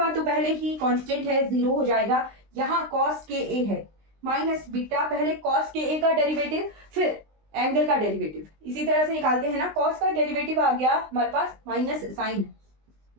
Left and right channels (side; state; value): left; late; 19 ms